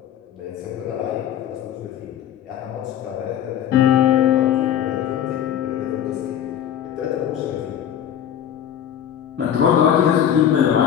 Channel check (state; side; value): quieter; right; 9.9 dB